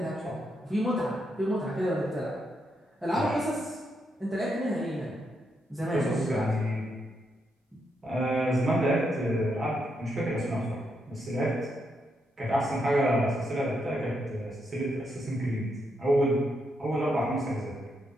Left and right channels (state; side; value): normal; both; correlation 0.80